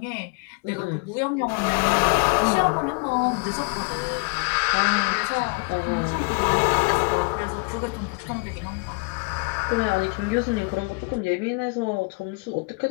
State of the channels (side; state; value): right; quieter; 33.5 dB